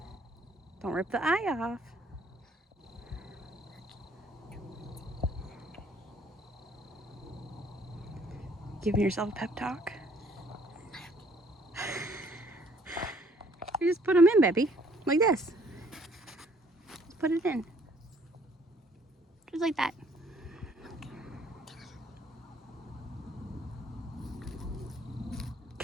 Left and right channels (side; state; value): both; normal; correlation 0.62